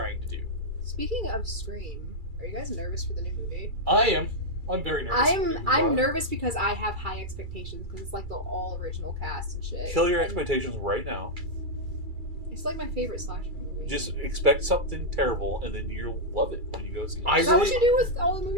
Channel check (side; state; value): left; late; 2.3 ms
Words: to do. Speaking of Scream, are you guys nervous for the new movie? I am. I'm very nervous. I'm nervous because I have high expectations because it's like the all original cast and shit. Kill your And expectations right now. It's like my favorite slasher movie. Just expect something terrible, and then you'll love it when you go see it. Is that what you do with all the